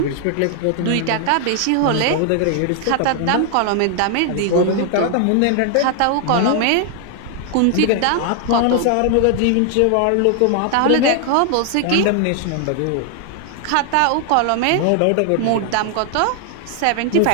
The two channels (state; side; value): different; both; correlation 0.00